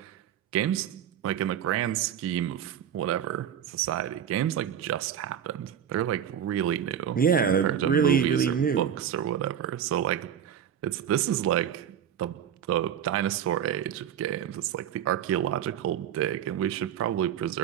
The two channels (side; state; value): left; quieter; 9.2 dB